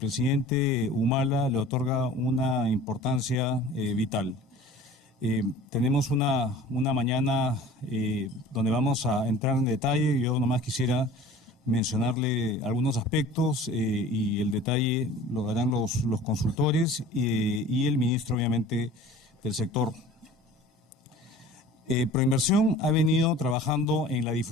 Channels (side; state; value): both; normal; correlation 0.44